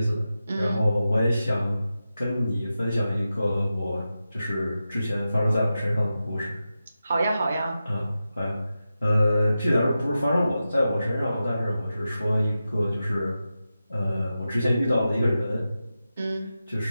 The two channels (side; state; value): both; inverted; correlation -0.92